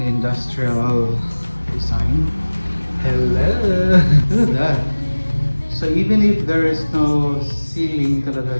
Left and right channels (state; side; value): inverted; both; correlation -1.00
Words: industrial design. Hello. Look at that. So even if there is no ceiling talaga